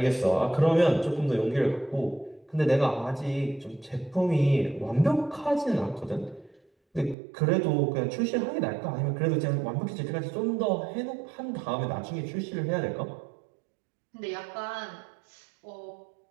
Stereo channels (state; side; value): drops out; left; at 7.2 s